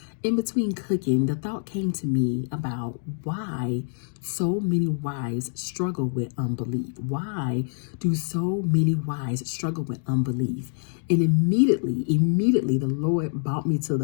In between cooking, the thought came to me about why so many wives struggle with unbelief. Why do so many wives struggle with unbelief? And immediately, the Lord brought me to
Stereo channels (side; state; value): right; silent; digital silence